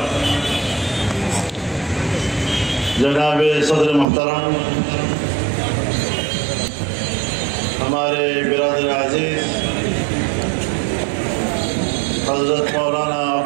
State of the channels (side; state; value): left; drops out; at 4.0 s